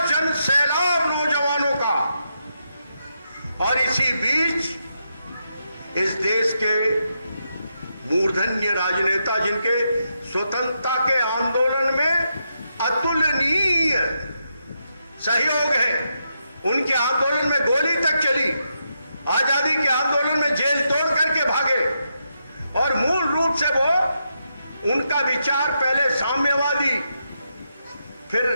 जन सैलाब नौजवानों का। और इसी बीच इस देश के मूर्धन्य राजनेता, जिनके स्वतंत्रता के आंदोलन में अतुलनीय सहयोग है, उनके आंदोलन में गोली तक चली, आजादी के आंदोलन में जेल तोड़ करके भागे। और मूल रूप से वो, उनका विचार पहले साम्यवादी, फिर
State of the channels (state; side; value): inverted; both; correlation -0.83